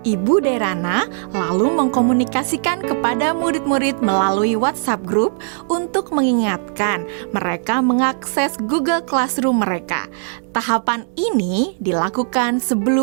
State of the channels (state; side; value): silent; left; digital silence